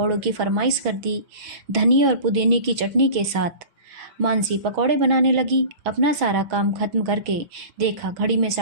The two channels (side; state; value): left; late; 6.1 ms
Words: की फरमाइश कर दी, धनिया और पुदीने की चटनी के साथ। मानसी पकौड़े बनाने लगी। अपना सारा काम खत्म करके देखा घड़ी में